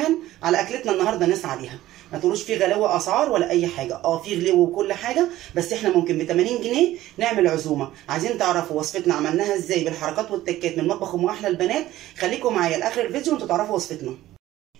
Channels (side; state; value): left; quieter; 14.9 dB